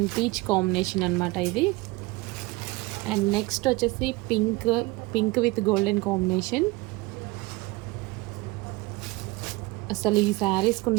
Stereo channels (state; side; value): quieter; left; 22.5 dB